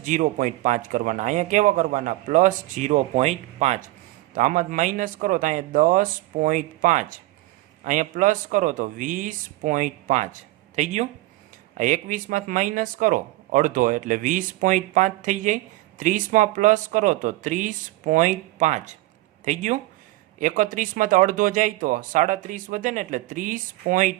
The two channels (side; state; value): left; quieter; 18.4 dB